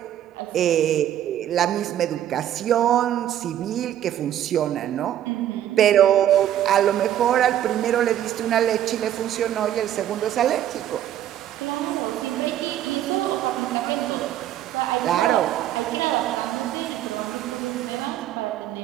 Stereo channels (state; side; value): quieter; left; 11.6 dB